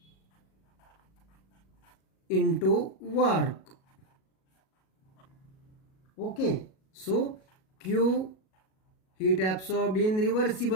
into work. Okay, so Q, heat absorbed in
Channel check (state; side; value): late; right; 37 ms